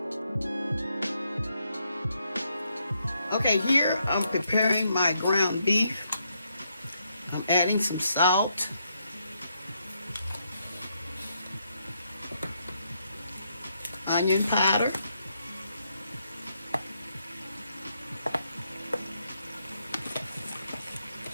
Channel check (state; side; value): inverted; both; correlation -0.78